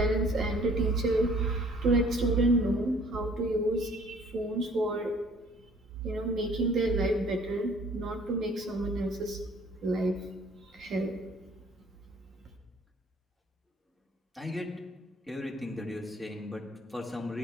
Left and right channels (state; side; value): normal; both; correlation 0.56